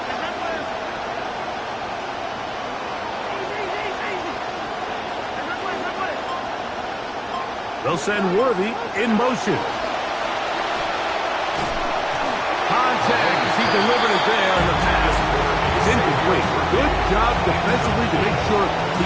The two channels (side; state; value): both; identical; correlation 1.00